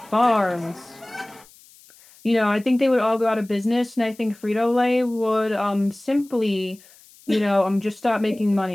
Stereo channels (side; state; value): left; noise; hiss, 26 dB below the sound